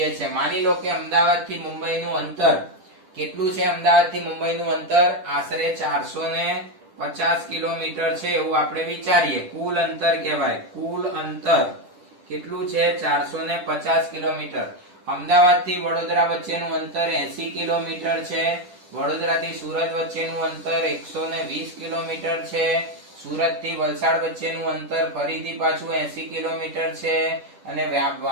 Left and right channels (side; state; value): left; late; 10 ms